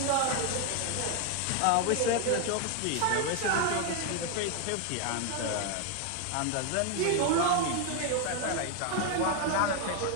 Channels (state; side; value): different; both; correlation 0.01